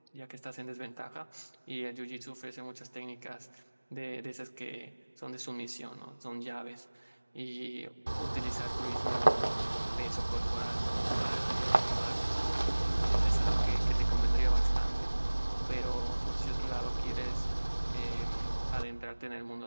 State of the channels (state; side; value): inverted; both; correlation -1.00